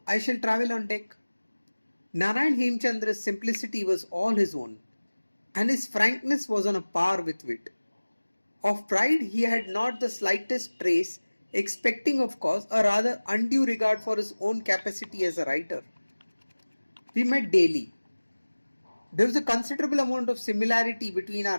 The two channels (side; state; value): both; inverted; correlation -1.00